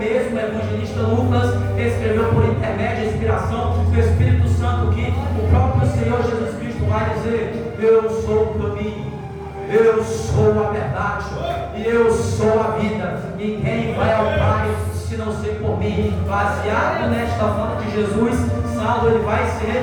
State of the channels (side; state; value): both; identical; correlation 1.00